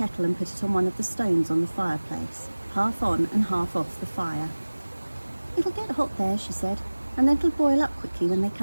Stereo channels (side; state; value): both; inverted; correlation -1.00